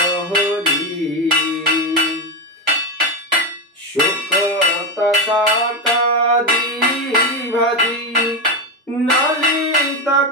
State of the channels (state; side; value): normal; both; correlation 0.11